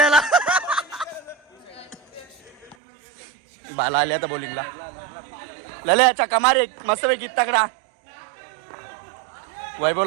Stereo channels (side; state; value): left; drops out; at 2.8 s